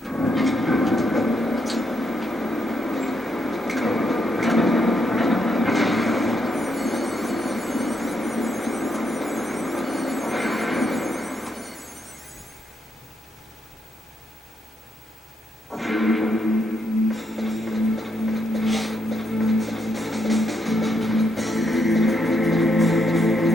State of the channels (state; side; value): normal; both; correlation 0.78